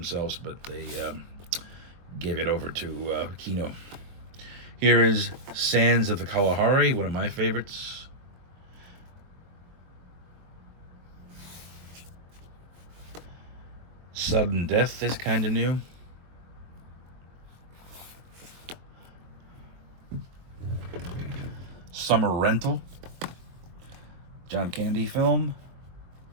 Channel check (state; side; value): late; left; 23 ms